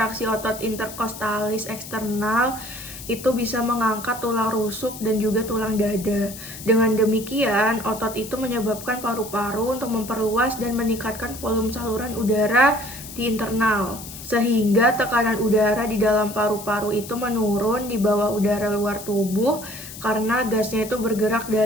otot interkostalis eksternal itu bisa mengangkat tulang rusuk dan juga tulang dada. Dengan demikian, otot itu menyebabkan paru-paru untuk memperluas dan meningkatkan volume saluran udara di internal, sehingga tekanan udara di dalam paru-paru itu menurun di bawah udara luar tubuh karena gasnya itu bergerak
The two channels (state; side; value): noise; left; hiss, 13 dB below the sound